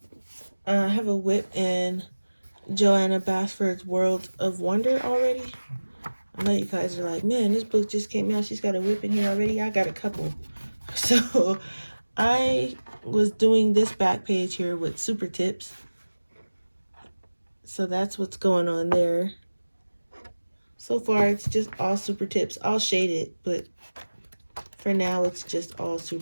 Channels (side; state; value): both; inverted; correlation -1.00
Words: I have a whip in Joanna Basford's World of Wonder already. I know you guys are like, man, this book just came out. She's got a whip in here already. I got a couple. So I was doing this back page here with super tips. So that's what's going on there. So far, it's just all super tips. I'll shade it, but for now, it's just all